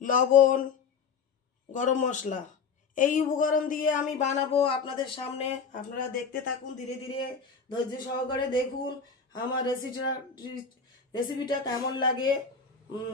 লবণ, গরম মশলা। এই উপকরণ দিয়ে আমি বানাবো আপনাদের সামনে। আপনারা দেখতে থাকুন, ধীরে ধীরে ধৈর্য সহকারে দেখুন আমার রেসিপিটা কেমন লাগে।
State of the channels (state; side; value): quieter; right; 5.6 dB